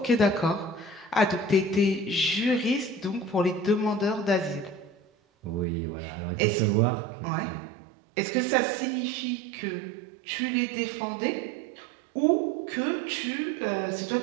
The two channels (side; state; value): left; drops out; at 5.7 s